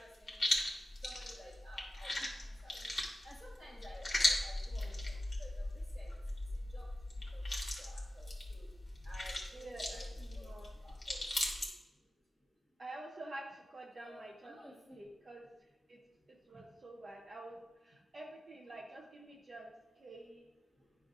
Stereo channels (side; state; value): both; normal; correlation 0.93